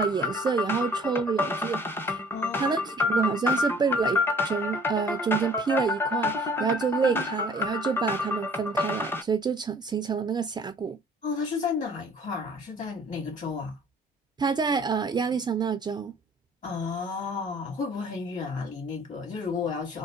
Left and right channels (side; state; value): both; normal; correlation 0.53